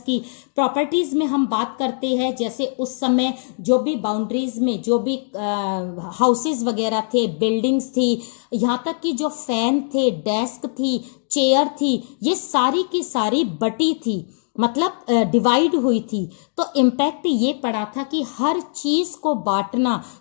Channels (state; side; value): silent; right; digital silence